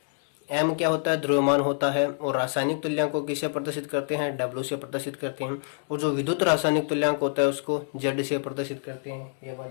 M क्या होता है, द्रव्यमान होता है और रासायनिक तुल्यांक को किससे प्रदर्शित करते हैं, W से प्रदर्शित करते हैं। और जो विद्युत रासायनिक तुल्यांक होता है उसको Z से प्रदर्शित करते हैं। यह बात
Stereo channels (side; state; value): right; silent; 61 dB below the other